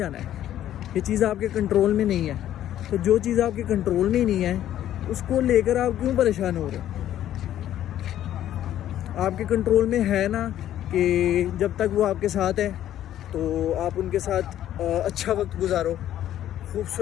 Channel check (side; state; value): right; quieter; 11.9 dB